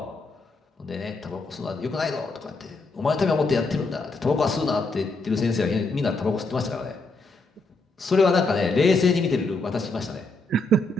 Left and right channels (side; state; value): right; quieter; 3.1 dB